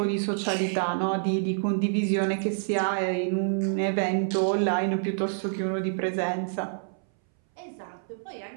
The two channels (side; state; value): left; silent; 60 dB below the other